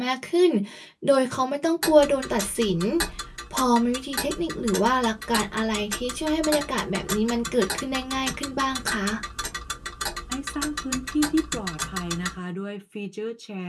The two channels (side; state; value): both; identical; correlation 1.00